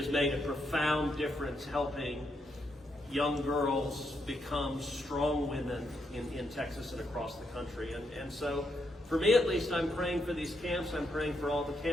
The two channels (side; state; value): both; normal; correlation 0.79